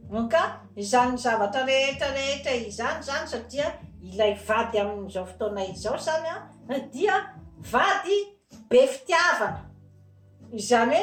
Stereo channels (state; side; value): identical; both; correlation 1.00